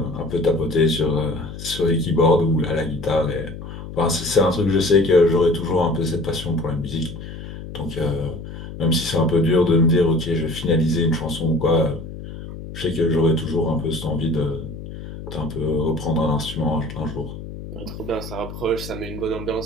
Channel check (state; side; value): noise; left; hum, 11 dB below the sound